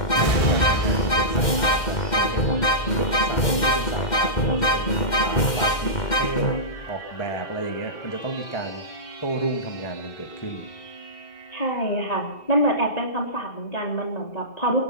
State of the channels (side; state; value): right; late; 2.1 ms